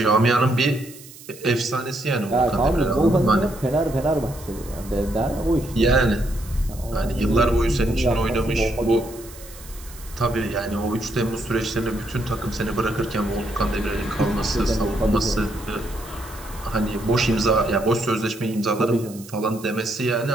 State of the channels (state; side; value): noise; right; hiss, 18 dB below the sound